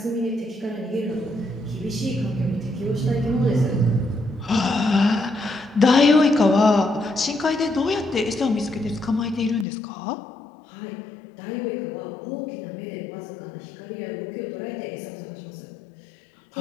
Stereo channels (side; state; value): right; drops out; at 9.7 s